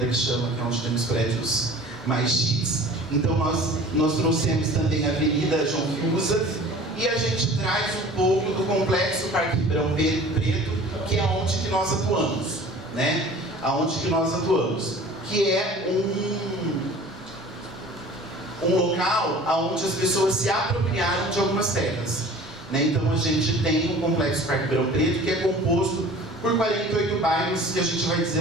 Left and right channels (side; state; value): both; normal; correlation 0.45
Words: que chama, que é onde temos prédios mais chiques. Então nós trouxemos também a Avenida João Fiuza, e a gente traz um pouco do Complexo Parque Ribeirão Preto, que é onde que nós atuamos, né? Aonde que nós atuamos, que é um local onde as pessoas se apropriaram de algumas terras, né? Então a gente tem um Complexo Parque Ribeirão Preto que é composto por 48 bairros, que a gente vai dizer